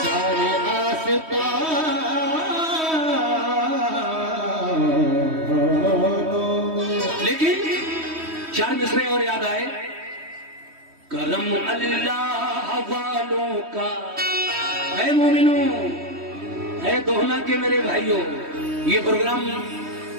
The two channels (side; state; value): left; late; 3.1 ms